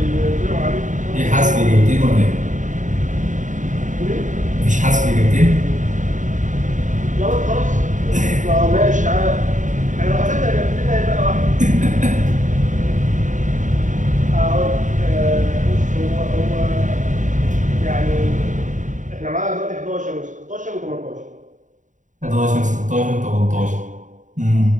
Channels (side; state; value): left; late; 0.36 ms